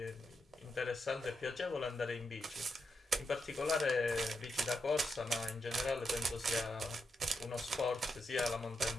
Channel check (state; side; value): normal; both; correlation 0.84